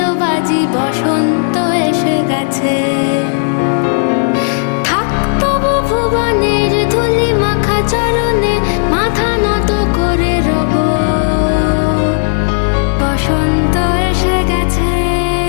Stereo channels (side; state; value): right; silent; digital silence